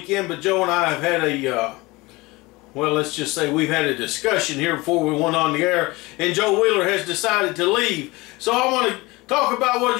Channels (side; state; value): right; quieter; 22.5 dB